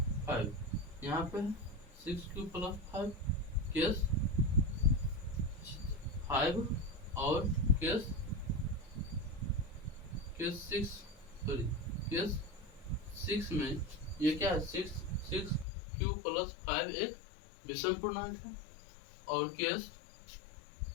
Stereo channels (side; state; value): right; drops out; at 15.7 s